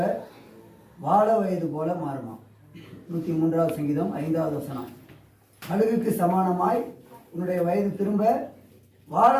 வாழ வயது போல மாறுமா. 103வது சங்கீதம் 5வது வசனம். கழுகுக்கு சமானமாய் உன்னுடைய வயது திரும்ப வாழ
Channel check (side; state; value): both; identical; correlation 1.00